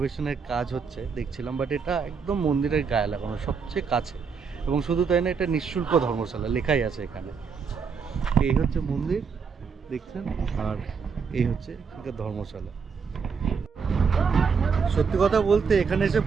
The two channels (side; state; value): left; quieter; 5.7 dB